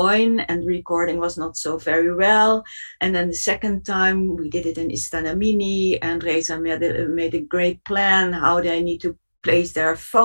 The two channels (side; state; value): both; inverted; correlation -1.00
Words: and recording was not so very well. And then the second time we did it in Istana Mini, and Reza made a great plan how they need to place their